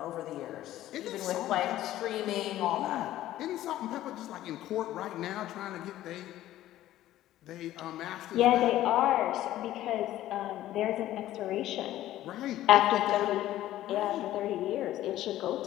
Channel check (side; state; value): right; quieter; 14.0 dB